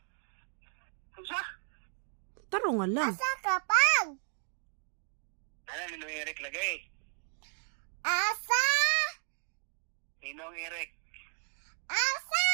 Unsa? Taro nga lang. Asa ka, Pang? Ano, Ninong Eric lagay. Asa? Ninong Eric. Asa?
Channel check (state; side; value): silent; left; 55 dB below the other